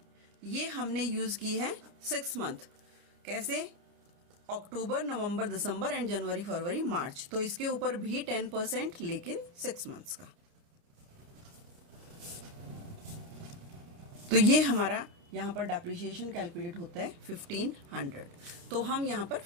ये हमने यूज़ की है 6 मंथ। कैसे? अक्टूबर, नवंबर, दिसंबर एंड जनवरी, फरवरी, मार्च। तो इसके ऊपर भी 10%, लेकिन 6 मंथ्स का। तो ये हमारा यहाँ पर डेप्रिसिएशन कैलकुलेट होता है 1500। तो हम यहाँ पर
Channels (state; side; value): late; left; 29 ms